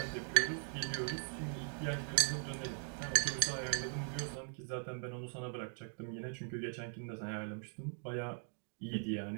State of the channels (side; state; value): left; silent; 51 dB below the other